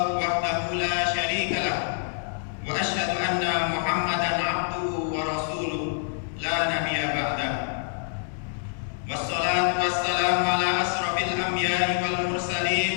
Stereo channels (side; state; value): right; silent; digital silence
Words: wahdahu la syarika lahu wa asyhadu anna Muhammadan abduhu wa rasuluh la nabiyya ba'dahu. Wassalatu wassalamu ala asrafil anbiya'i wal mursalin